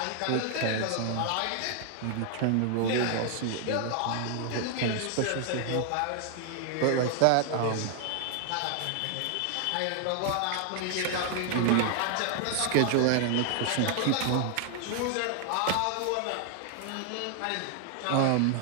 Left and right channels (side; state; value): both; different; correlation 0.00